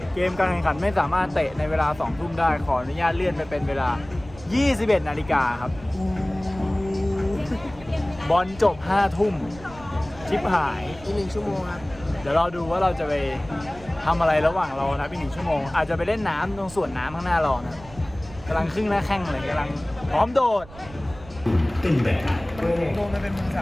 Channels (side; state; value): right; noise; rumble, 18 dB below the sound